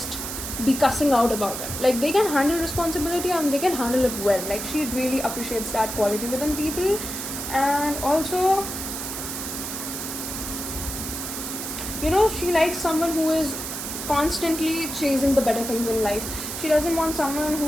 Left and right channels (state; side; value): noise; right; hiss, 6 dB below the sound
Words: be cussing out about it. Like they can handle responsibility and they can handle it well. Like she really appreciates that quality within people. And also, you know, she likes someone who is constantly chasing the better things in life. She doesn't want someone